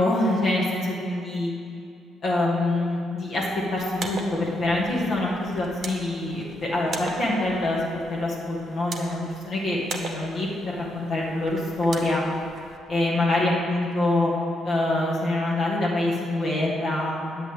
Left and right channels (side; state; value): both; normal; correlation 0.80